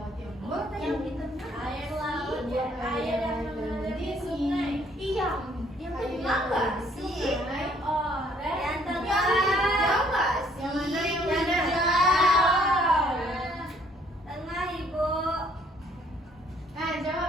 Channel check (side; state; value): both; normal; correlation 0.63